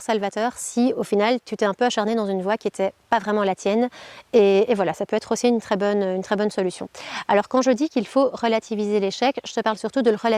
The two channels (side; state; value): both; identical; correlation 1.00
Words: salvateur, si au final tu t'es un peu acharné dans une voie qui n'était pas vraiment la tienne. Et voilà, ça peut être aussi une très bonne solution. Alors quand je dis qu'il faut relativiser l'échec, je te parle surtout de le